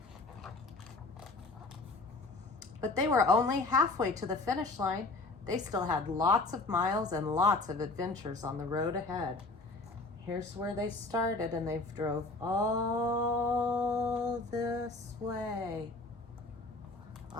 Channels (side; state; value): right; quieter; 3.3 dB